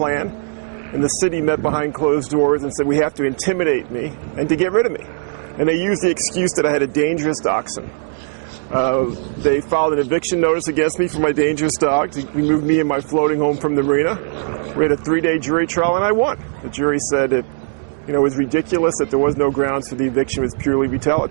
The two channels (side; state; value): left; silent; 65 dB below the other